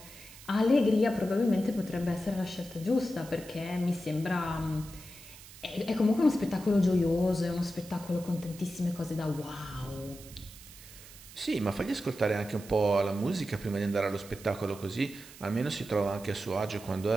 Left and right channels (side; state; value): right; noise; hiss, 18 dB below the sound